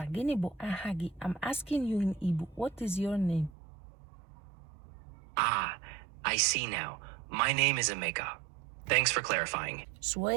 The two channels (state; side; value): drops out; left; at 3.5 s